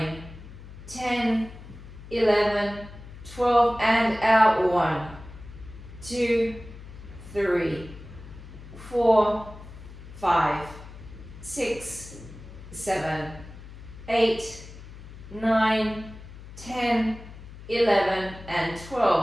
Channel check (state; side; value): noise; left; hum, 16 dB below the sound